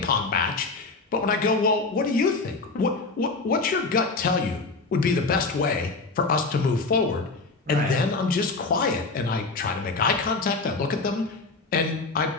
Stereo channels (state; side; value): quieter; right; 3.8 dB